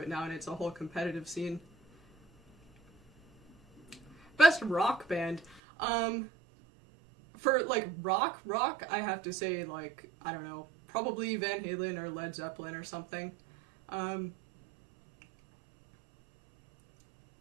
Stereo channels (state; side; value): drops out; left; at 5.6 s